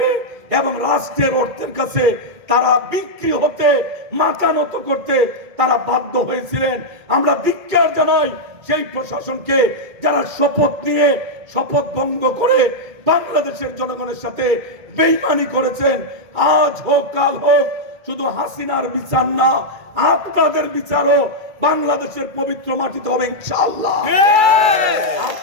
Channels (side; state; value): left; late; 2.3 ms